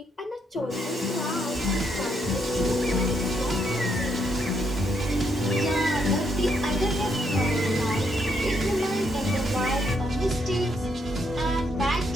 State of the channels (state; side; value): normal; both; correlation 0.75